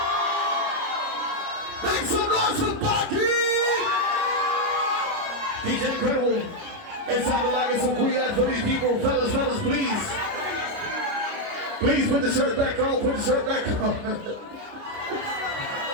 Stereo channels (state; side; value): late; left; 29 ms